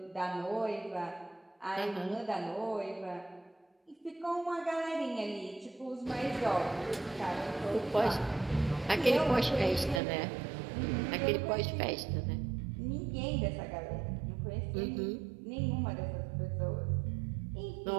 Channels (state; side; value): drops out; left; at 10.0 s